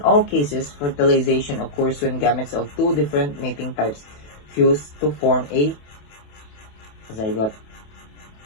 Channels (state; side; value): late; right; 28 ms